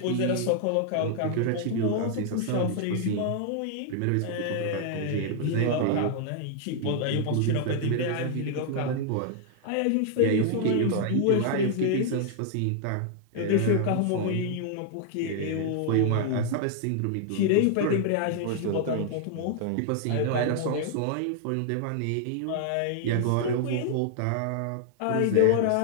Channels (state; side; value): different; both; correlation -0.01